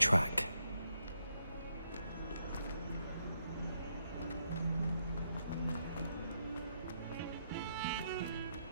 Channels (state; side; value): inverted; both; correlation -0.78